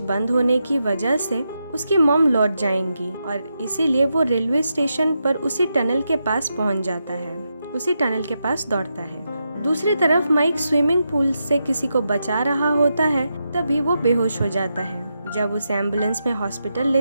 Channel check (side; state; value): both; inverted; correlation -0.86